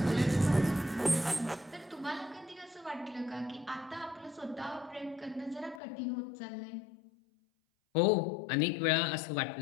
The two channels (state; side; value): drops out; right; at 5.8 s